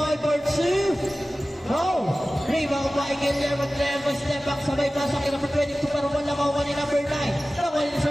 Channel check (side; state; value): both; normal; correlation 0.96